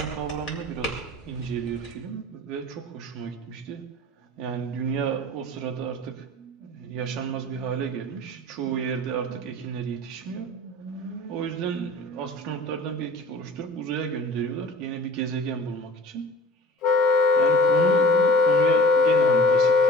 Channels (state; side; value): normal; both; correlation 0.44